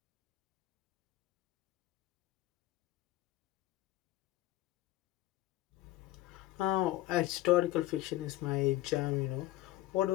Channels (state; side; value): quieter; right; 15.5 dB